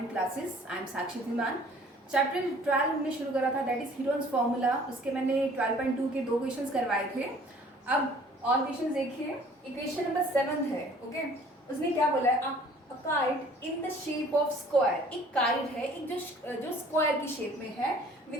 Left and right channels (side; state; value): both; normal; correlation 0.53